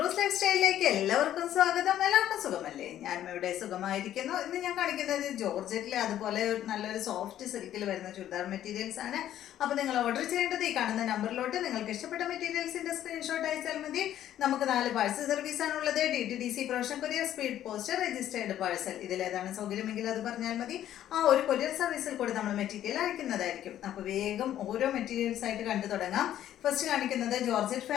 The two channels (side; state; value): right; quieter; 11.7 dB